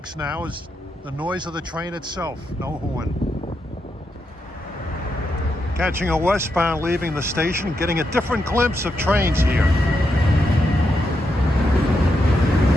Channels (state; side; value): normal; both; correlation 0.83